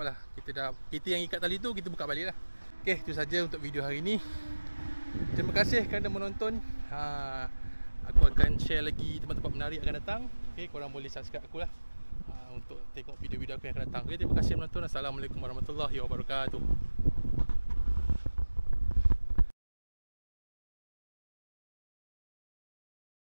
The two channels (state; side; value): inverted; both; correlation -1.00